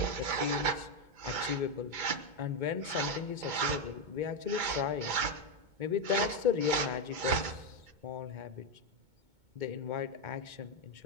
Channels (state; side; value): late; left; 2.2 ms